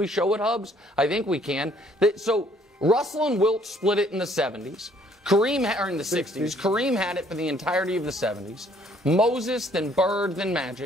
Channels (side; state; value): both; normal; correlation 0.62